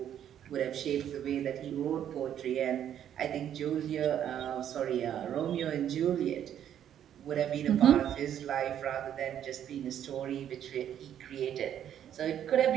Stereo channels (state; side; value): quieter; left; 10.1 dB